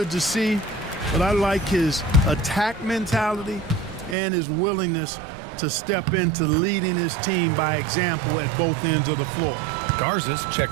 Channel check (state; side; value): drops out; left; at 4.2 s